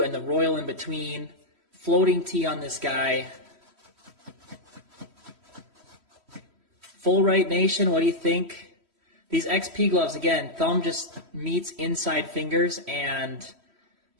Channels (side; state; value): left; late; 3.1 ms